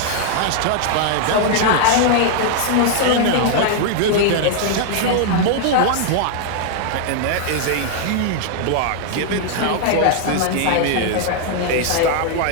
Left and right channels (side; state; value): both; different; correlation 0.00